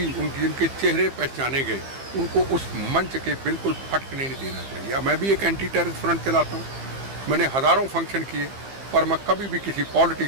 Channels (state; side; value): late; left; 15 ms